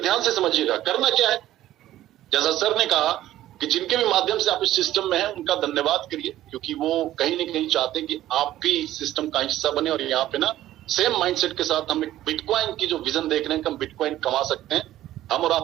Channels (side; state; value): left; quieter; 13.8 dB